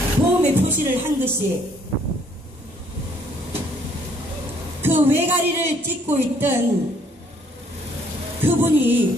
도움의 표시를 한 것이 그 외가리를 찍고 있던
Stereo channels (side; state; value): both; normal; correlation 0.64